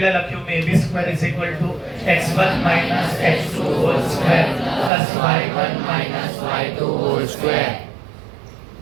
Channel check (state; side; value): drops out; left; at 4.9 s